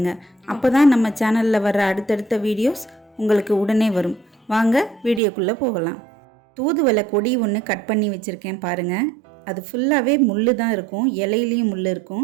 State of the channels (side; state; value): left; drops out; at 5.2 s